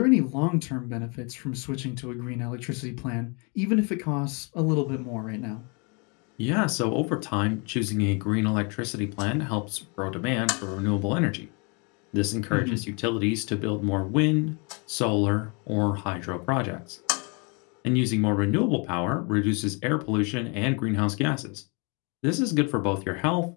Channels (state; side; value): quieter; right; 33.0 dB